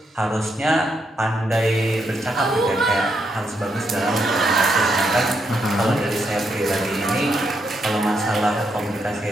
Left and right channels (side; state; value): both; normal; correlation 0.79